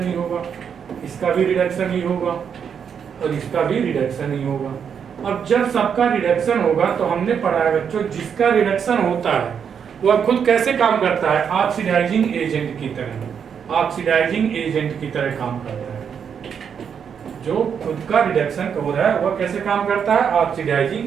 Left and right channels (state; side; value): quieter; left; 7.3 dB